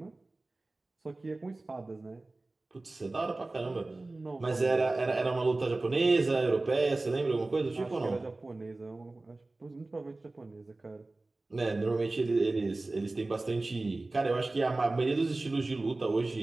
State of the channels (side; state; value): left; quieter; 3.1 dB